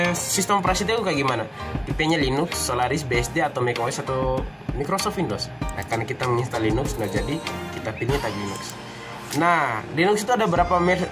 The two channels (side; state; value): both; identical; correlation 1.00